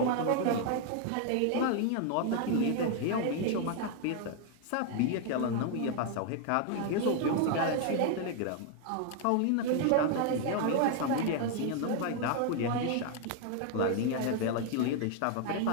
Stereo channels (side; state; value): both; different; correlation 0.01